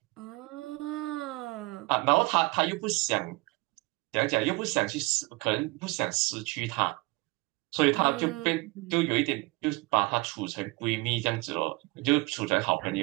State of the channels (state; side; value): quieter; left; 24.7 dB